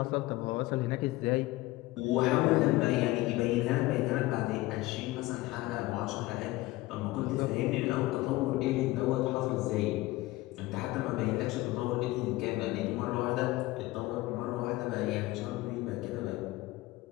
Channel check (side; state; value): right; quieter; 19.0 dB